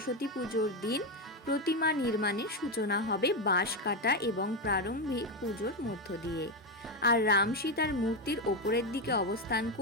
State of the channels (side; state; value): both; normal; correlation 0.09